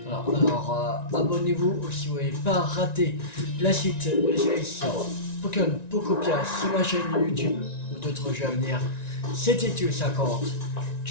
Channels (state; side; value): late; right; 1.9 ms